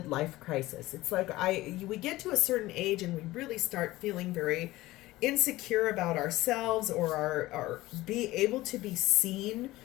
crisis. It's like we get to a certain age and we really start feeling very insecure about ourselves, or our be able to be seen,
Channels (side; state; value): right; quieter; 17.9 dB